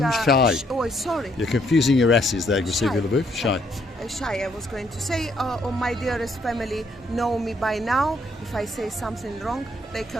is, Shy. Oh, sorry. You're confusing your S's there, Grisivia Shy. Laboof. Shy. Shy, I was going to say, my dearest family know me by now. If I say something wrong, they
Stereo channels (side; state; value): both; normal; correlation 0.70